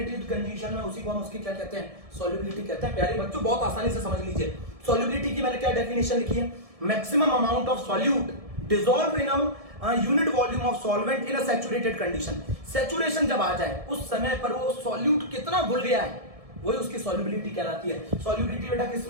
कंडीशन में, उसी को हम उसकी क्या कहते हैं, सॉल्युबिलिटी कहते हैं। प्यारे बच्चों बहुत आसानी से समझ लीजिए। सॉल्युबिलिटी की मैंने क्या डेफिनेशन लिखी है, maximum amount of solute dissolve in a unit volume of solvent in a saturated condition. Saturation जब आ जाए उस समय पर वो सॉल्यूट कितना घुल गया है, वही उसकी सॉल्युबिलिटी कहलाती है। सॉल्युबिलिटी बेटा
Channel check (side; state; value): left; late; 1.7 ms